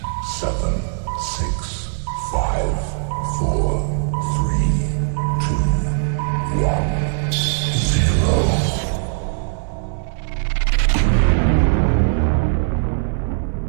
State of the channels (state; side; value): silent; left; 59 dB below the other